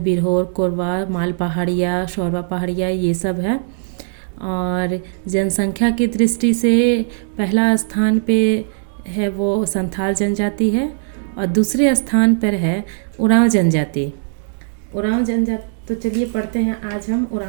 बिरहोर, कोरवा, माल पहाड़िया, शौरवा पहाड़िया ये सब है। और जनसंख्या की दृष्टि से पहला स्थान पे है वो संथाल जनजाति है और दूसरे स्थान पर है उरांव जनजाति। उरांव जनजाति, तो चलिए पढ़ते हैं आज हम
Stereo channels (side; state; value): left; silent; digital silence